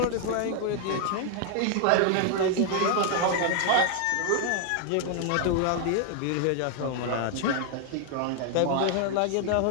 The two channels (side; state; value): both; different; correlation 0.00